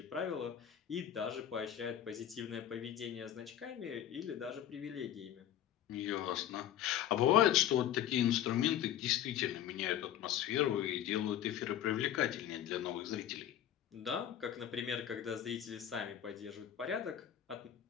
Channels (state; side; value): quieter; right; 10.9 dB